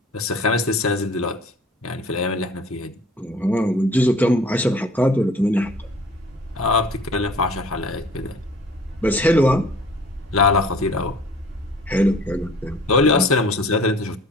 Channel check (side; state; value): both; normal; correlation 0.49